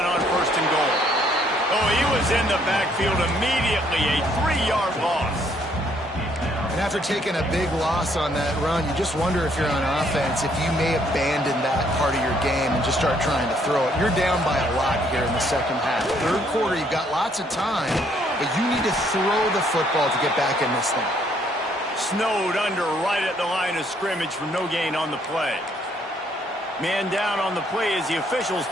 on 1st and goal. Oh, he was in the backfield immediately. A 3-yard loss. And after taking a big loss on that run, you just wonder if you're on offense, if you may abandon that part of your game and just start trying to throw it. You're down by a lot here in the 2nd half. 3rd quarter, you've got lots of time, but you need to throw the football to get back in this thing. Snowed under right at the line of scrimmage for no gain on the play. Man down on the play as the officials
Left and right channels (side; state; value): both; normal; correlation 0.67